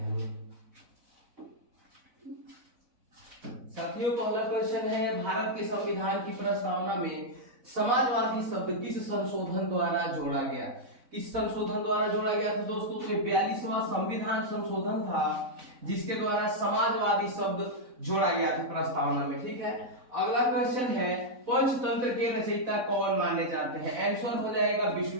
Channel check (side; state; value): left; late; 4.0 ms